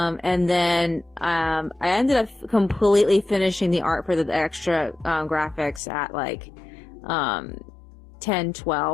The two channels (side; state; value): right; drops out; at 5.8 s